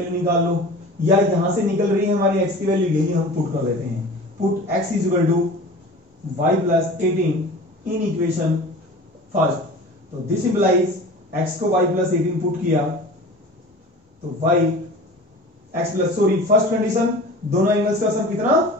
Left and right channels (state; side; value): normal; both; correlation 0.39